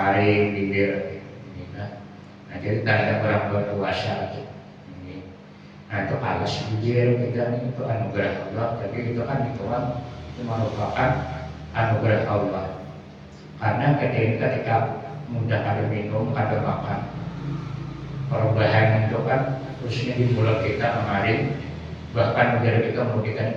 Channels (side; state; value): both; identical; correlation 1.00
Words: bibir. Nah jadi tanda orang berpuasa. Nah itu alas bibir kita ini itu anugerah Allah. Tapi itu kan itu merupakan anugerah Allah. Karena ketika mudah ada minum, ada makan, perubahan itu kan khususnya di mulut kita mengalir, bahkan udara kita mulut kita